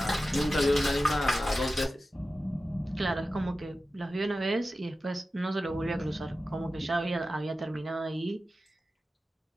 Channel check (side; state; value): both; normal; correlation 0.94